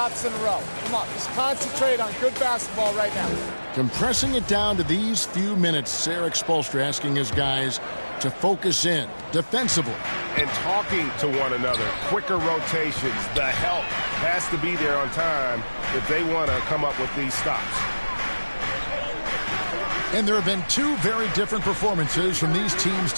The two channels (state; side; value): inverted; both; correlation -1.00